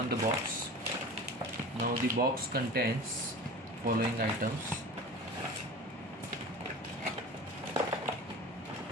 the box. Now the box contains following items.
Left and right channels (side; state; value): both; normal; correlation 0.36